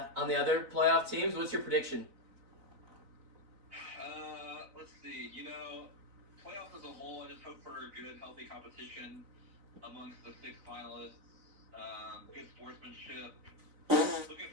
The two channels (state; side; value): late; left; 4.0 ms